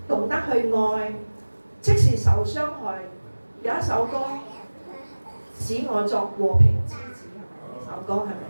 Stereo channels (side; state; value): both; inverted; correlation -1.00